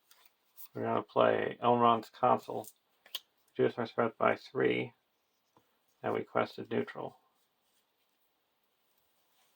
We're going to play Elrond's Consul. Reduce our threat by 3. And we quested neutral.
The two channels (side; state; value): both; identical; correlation 1.00